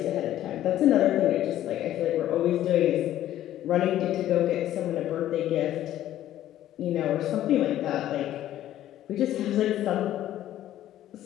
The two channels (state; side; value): quieter; right; 12.8 dB